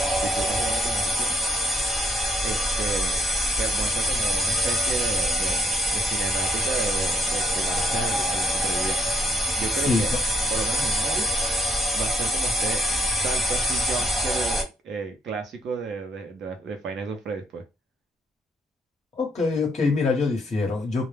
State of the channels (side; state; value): both; normal; correlation 0.71